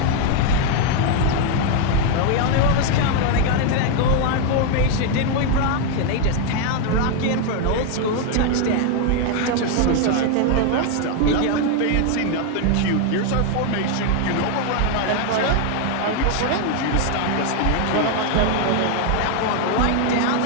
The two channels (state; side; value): different; both; correlation 0.00